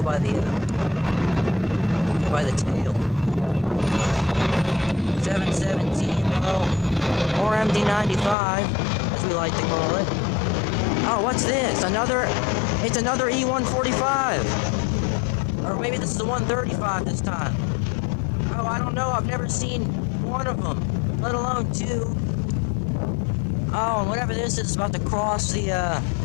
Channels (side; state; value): right; drops out; at 8.3 s